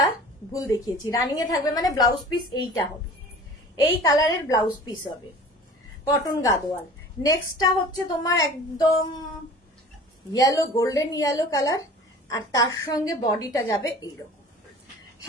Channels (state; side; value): normal; both; correlation 0.43